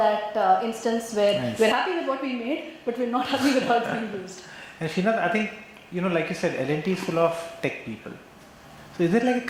instance where we're happy with what we made, but we're not happy with how it's being used. And Srinath, I think, like you said, L&T is full of tech people. So is there like a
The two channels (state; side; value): identical; both; correlation 1.00